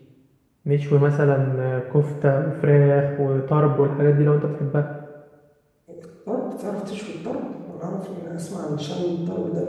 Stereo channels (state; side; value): identical; both; correlation 1.00